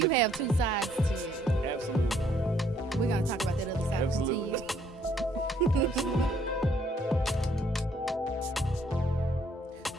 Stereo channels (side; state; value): both; normal; correlation 0.66